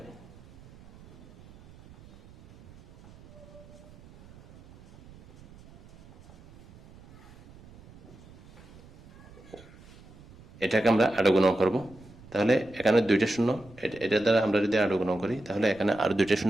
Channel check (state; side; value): noise; right; rumble, 22 dB below the sound